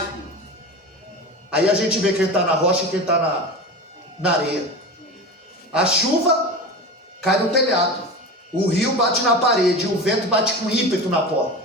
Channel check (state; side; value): normal; both; correlation 0.28